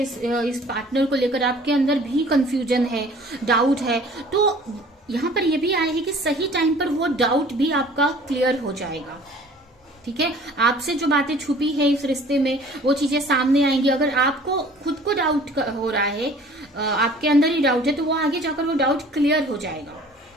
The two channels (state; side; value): normal; both; correlation 0.50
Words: इस पार्टनर को लेकर, आपके अंदर भी कंफ्यूजन है, डाउट है, तो यहाँ पर यह भी आया है कि सही टाइम पर वो डाउट भी आपका क्लियर हो जाएगा, ठीक है। आपसे जो बातें छुपी है इस रिश्ते में वो चीजें सामने आएंगी। अगर आपको खुद को डाउट हो रहा है, आपके अंदर ही डाउट है, तो वो आगे जाकर वो डाउट क्लियर हो जाएगा।